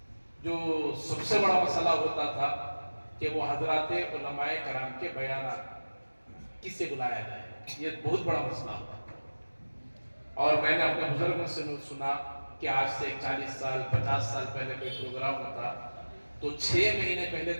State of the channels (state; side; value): inverted; both; correlation -1.00